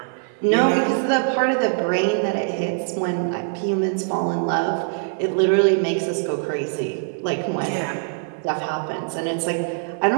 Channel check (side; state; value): left; silent; 59 dB below the other